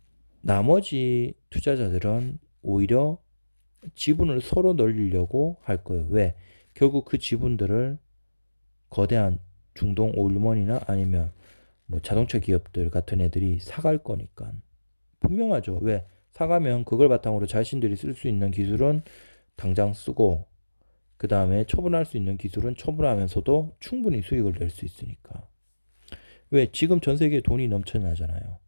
나머지 투자자들은 오히려 지분을 서로 늘리려고 할 거예요. 왜? 결국 그 지분들을 거대한 중동 오일먼이나 아니면 뭐 자동차 기업들 같은 애들이 사갈 거니까. 분명하죠. 왜? 사가면 그걸 바탕으로 자신들이 쓸 수 있는 기술은 당장 쓰고, 그 다음에 처분할 수 있는 기술은 처분하면서도 충분히 수익을 낼 수 있으니까. 왜? 지금 전 세계에 돈이 넘쳐나잖아요.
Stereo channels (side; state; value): both; inverted; correlation -1.00